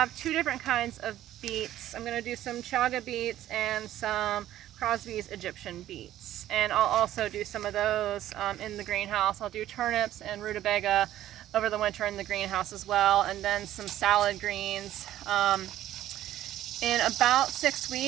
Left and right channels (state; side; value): quieter; left; 13.1 dB